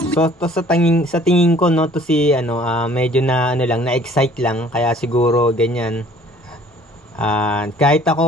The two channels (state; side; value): normal; both; correlation 0.54